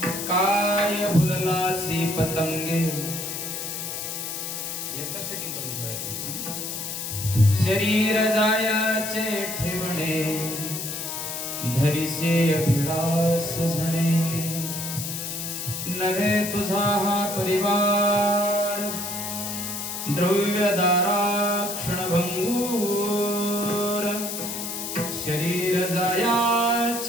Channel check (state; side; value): noise; left; hiss, 5 dB below the sound